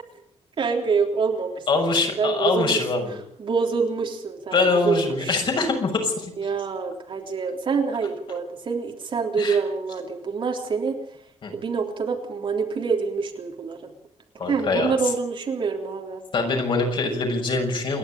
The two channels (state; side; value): normal; both; correlation 0.55